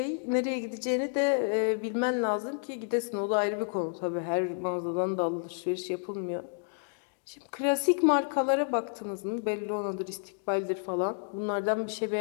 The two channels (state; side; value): silent; right; digital silence